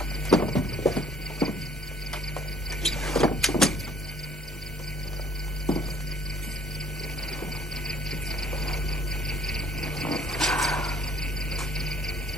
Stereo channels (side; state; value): both; normal; correlation 0.58